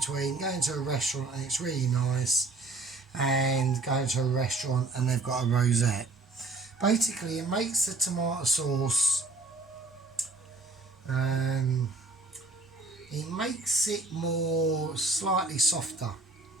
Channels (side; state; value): left; quieter; 3.5 dB